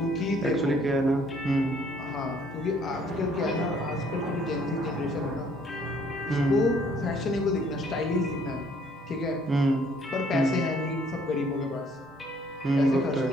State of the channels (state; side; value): normal; both; correlation 0.62